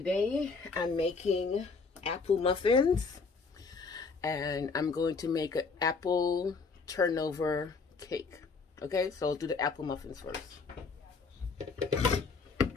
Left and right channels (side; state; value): right; quieter; 4.6 dB